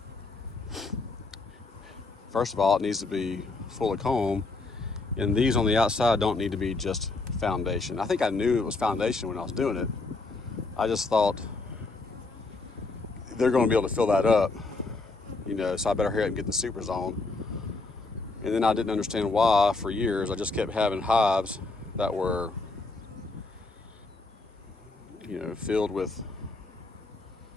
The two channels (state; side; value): quieter; right; 3.6 dB